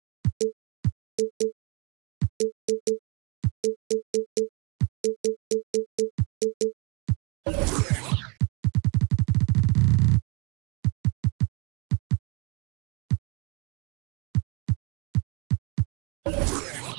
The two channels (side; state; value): left; quieter; 30.3 dB